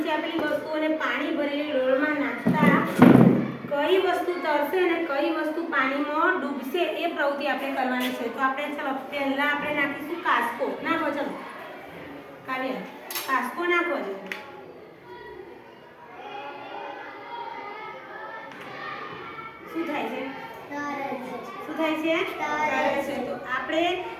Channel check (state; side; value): identical; both; correlation 1.00